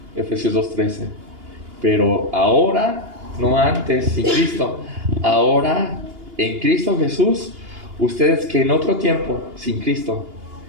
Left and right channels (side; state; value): left; late; 2.8 ms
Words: Efesios 2:13, pero ahora, no antes, sin Cristo, ahora en Cristo Jesús, ustedes que en otro tiempo, sin Cristo,